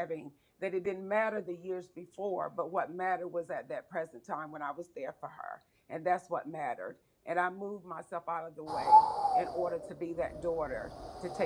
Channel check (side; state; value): both; identical; correlation 1.00